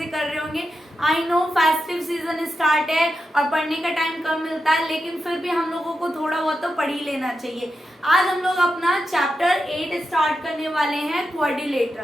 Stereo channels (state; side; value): normal; both; correlation 0.88